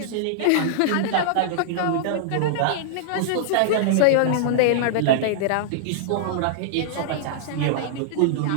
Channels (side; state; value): both; different; correlation -0.01